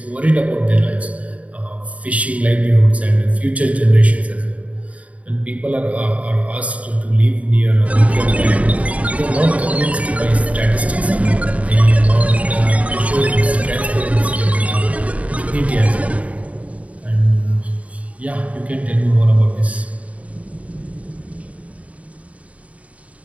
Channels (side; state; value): left; late; 0.067 ms